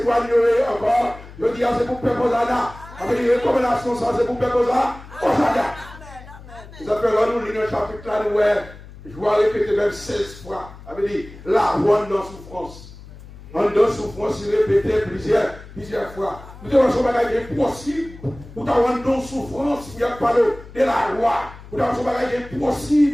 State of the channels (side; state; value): left; noise; hum, 17 dB below the sound